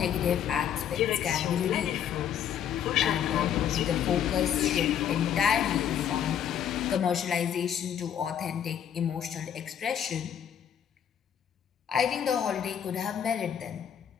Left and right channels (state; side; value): quieter; right; 9.2 dB